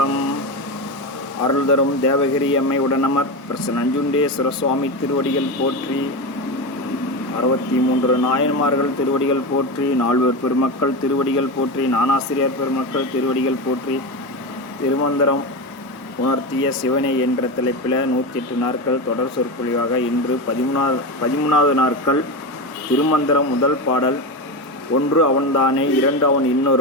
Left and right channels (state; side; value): normal; both; correlation 0.18